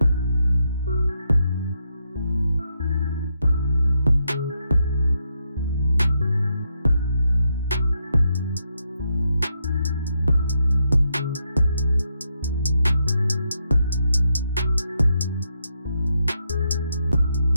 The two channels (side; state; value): both; inverted; correlation -0.80